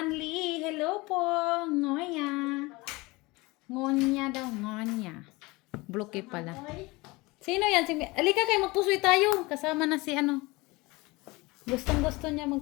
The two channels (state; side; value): quieter; right; 23.2 dB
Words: Hello po. Ngoya. Ngonya daw. Ngonya. Bloke pala. Sino yan? Alika kayo, magpusoy tayo. Kasama na si ano. Gustong gusto niya